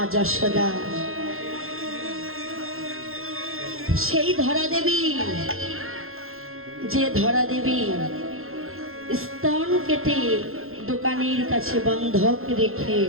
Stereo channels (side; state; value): left; late; 0.61 ms